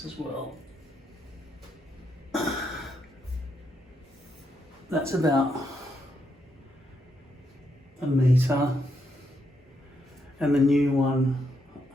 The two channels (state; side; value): normal; both; correlation 0.79